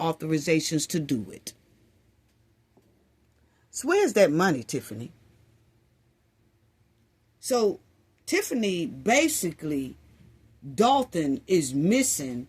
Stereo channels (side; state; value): both; identical; correlation 1.00